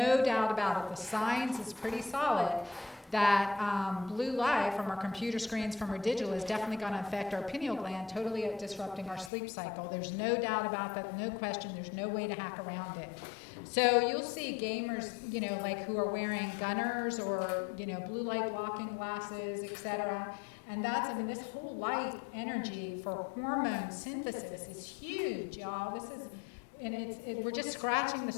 doubt about it. The science is pretty solid that blue light from our computer screens, from our digital, is definitely going to affect our pineal gland, totally disrupting our sleep cycle. There's no doubt about that, no question. There's no way to hack around it. So you'll see gamers, who are wearing gunners or, blue light blocking glasses, etc. And this whole light energy for hormone synthesis is huge, y'all. We're just scratching the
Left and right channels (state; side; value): drops out; right; at 9.3 s